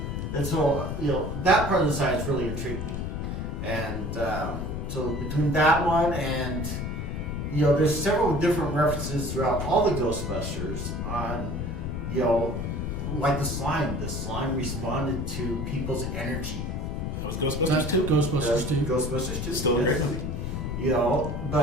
And so, that part of the science really intrigued me. And so between that one and, there's several different references throughout all the Ghostbusters on, like the slime. The slime responded to people's energy. That was Ghostbusters 2? Ghostbusters 2. Ghostbusters 2. Still a great movie.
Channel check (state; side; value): noise; left; rumble, 3 dB below the sound